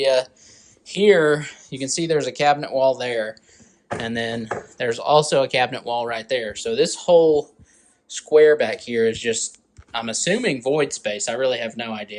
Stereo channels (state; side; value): identical; both; correlation 1.00